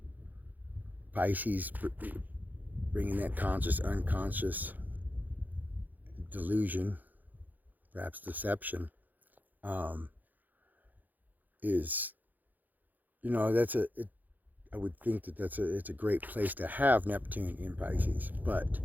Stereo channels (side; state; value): left; late; 0.084 ms